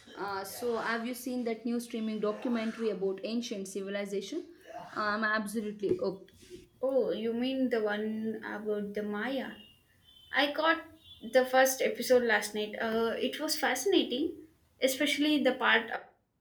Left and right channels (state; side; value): identical; both; correlation 1.00